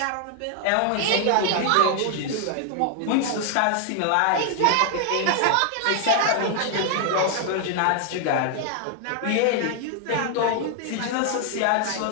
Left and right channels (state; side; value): different; both; correlation 0.00